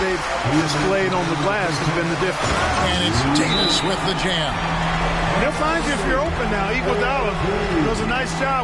displayed on the glass has been the difference. And it's Davis with the jam. He'll find you if you're open now. Iguodala does a nice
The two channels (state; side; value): identical; both; correlation 1.00